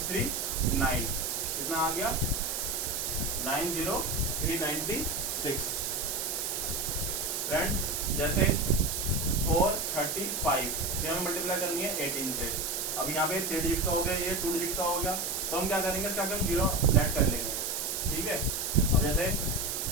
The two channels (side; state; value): right; noise; hiss, 1 dB below the sound